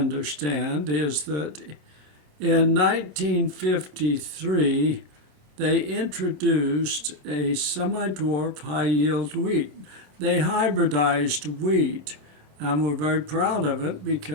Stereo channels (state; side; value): late; left; 27 ms